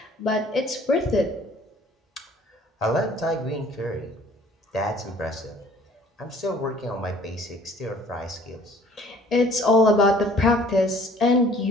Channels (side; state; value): both; normal; correlation 0.54